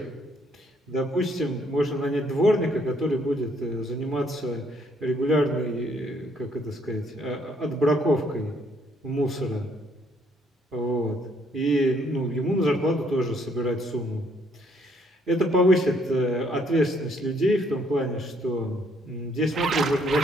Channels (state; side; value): normal; both; correlation 0.68